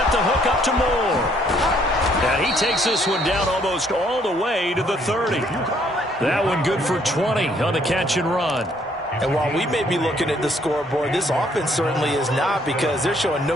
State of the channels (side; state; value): both; normal; correlation 0.66